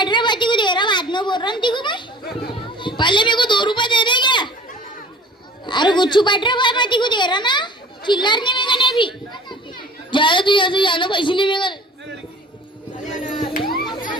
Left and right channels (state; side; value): normal; both; correlation 0.45